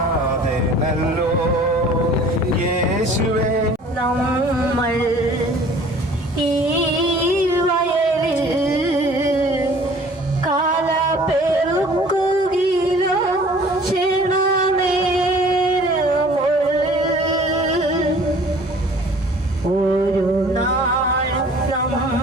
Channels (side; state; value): both; normal; correlation 0.50